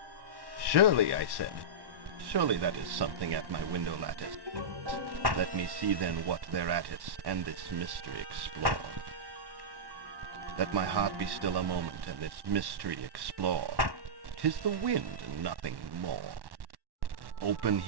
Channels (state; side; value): late; left; 1.1 ms